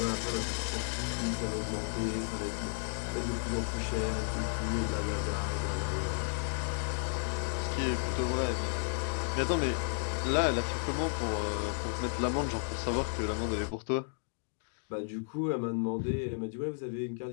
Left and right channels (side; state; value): right; silent; digital silence